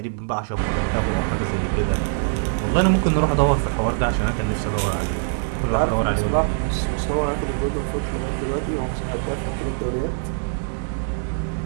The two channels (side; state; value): left; silent; digital silence